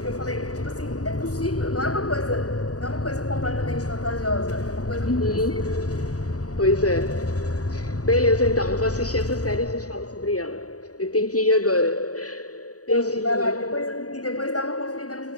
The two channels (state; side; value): late; right; 0.67 ms